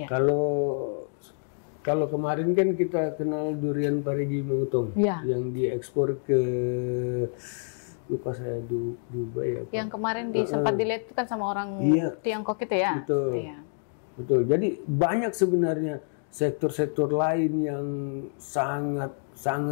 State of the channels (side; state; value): right; silent; digital silence